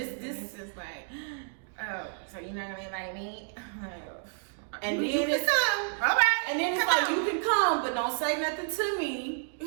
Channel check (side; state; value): left; silent; digital silence